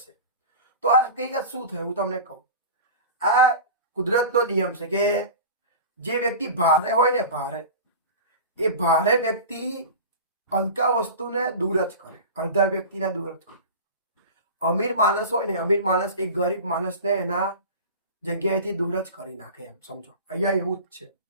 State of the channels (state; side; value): inverted; both; correlation -0.33